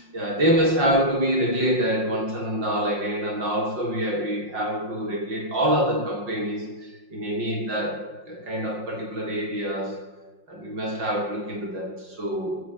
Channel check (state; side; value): late; left; 5.6 ms